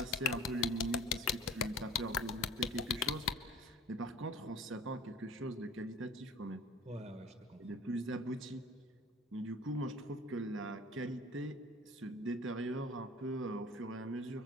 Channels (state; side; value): normal; both; correlation 0.43